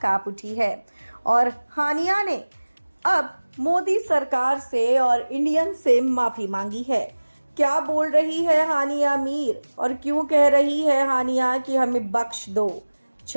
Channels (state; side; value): inverted; both; correlation -1.00